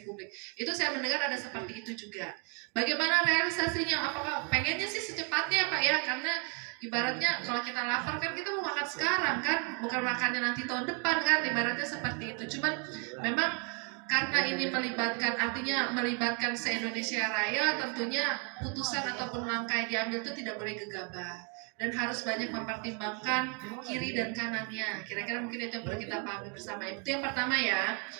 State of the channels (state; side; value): quieter; left; 37.2 dB